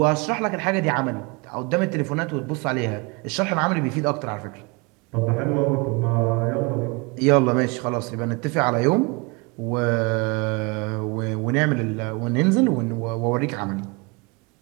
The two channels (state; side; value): quieter; left; 28.6 dB